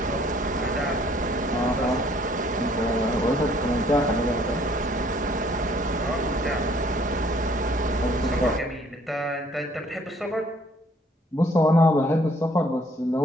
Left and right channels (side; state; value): both; normal; correlation 0.61